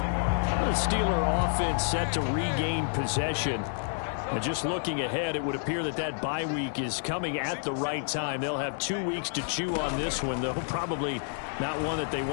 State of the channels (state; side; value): silent; right; digital silence